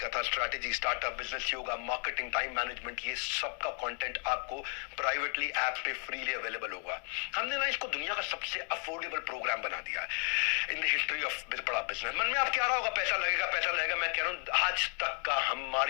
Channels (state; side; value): quieter; right; 36.0 dB